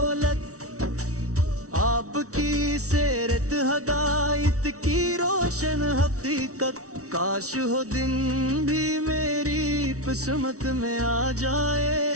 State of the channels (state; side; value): late; left; 0.65 ms